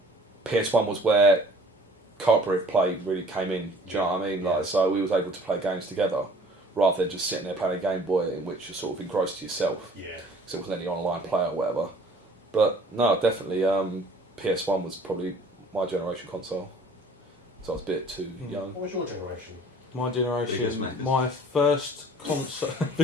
PS1 was where cooperative play really came in. Do you know what I mean? Like, so we was able to play games together rather than just sitting there playing a Game Boy in which you're sort of engrossed to yourself. Yeah. Because there wasn't any online play or whatever. But no, definitely PS1 was probably my generation console. So I was a bit too young. What was your generation? My Biggest generation, Maccas. my first console. Are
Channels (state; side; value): normal; both; correlation 0.51